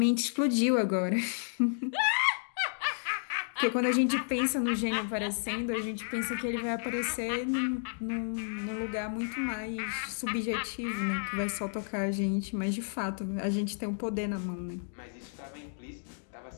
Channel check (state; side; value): silent; right; digital silence